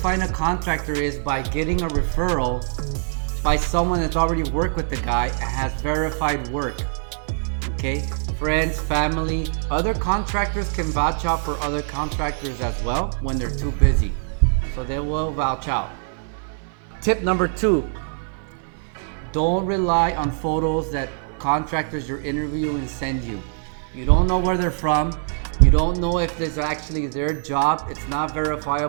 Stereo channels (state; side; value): silent; left; 58 dB below the other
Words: a contractor is by getting a referral by someone that's already worked with the guy and has verified work. Okay, friends, family, other contractors can vouch out for other contractors as well when they're too busy, so they will vouch out. Tip number 2, don't rely on photos that contractors you're interviewing send you. You don't know where they're from. You don't know if this is actually their job. It's not